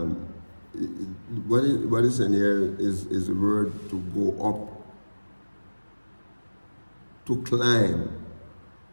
what is in here is the word to go up, to climb,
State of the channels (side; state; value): both; inverted; correlation -1.00